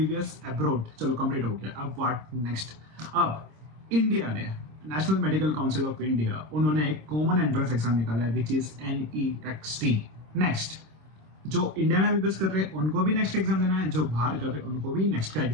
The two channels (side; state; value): left; late; 26 ms